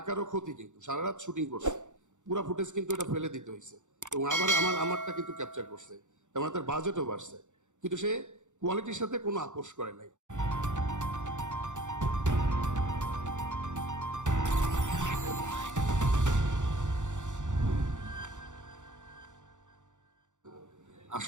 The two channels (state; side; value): late; left; 0.85 ms